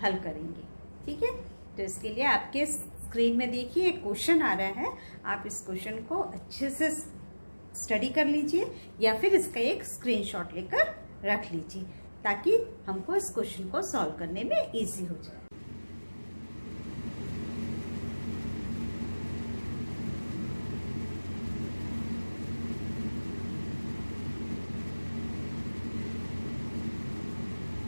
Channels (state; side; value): inverted; both; correlation -1.00